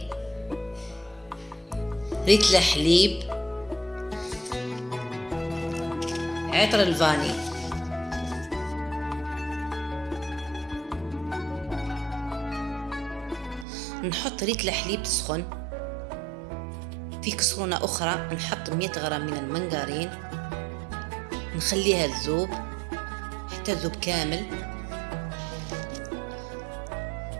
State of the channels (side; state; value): left; drops out; at 13.7 s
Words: ريتل حليب، عطر الفاني. نحط ريتل حليب تسخن. في كسرونة أخرى نحط 100 غرام من المنغرين، نخليها تذوب حتى تذوب كامل.